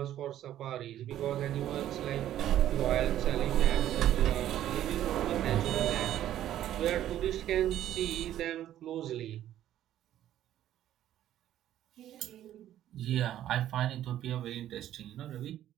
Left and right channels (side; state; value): left; quieter; 12.1 dB